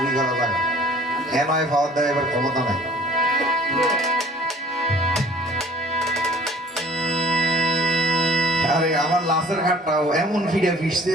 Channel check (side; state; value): both; normal; correlation 0.51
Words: করা জায়গা, নয় পাওয়ার দেয় এবার ক্ষমতা নাই। আরে আমার লাশের ঘাটটাও এমন ফিরে